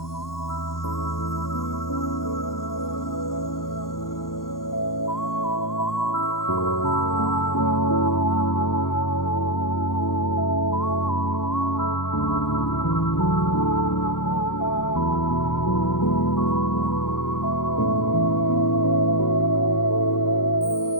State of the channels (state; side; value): late; right; 0.92 ms